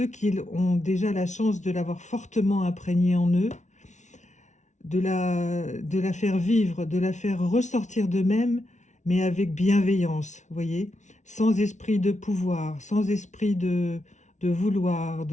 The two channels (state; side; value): late; right; 0.35 ms